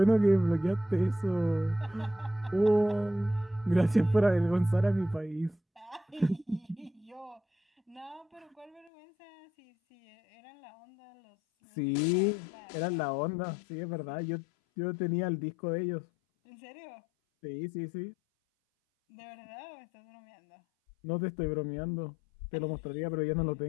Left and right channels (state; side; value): drops out; right; at 8.9 s